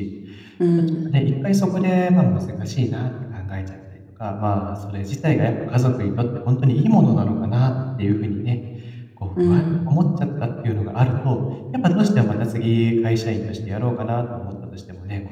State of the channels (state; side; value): identical; both; correlation 1.00